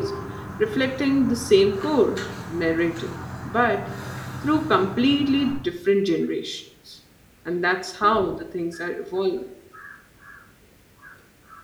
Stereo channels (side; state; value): both; identical; correlation 1.00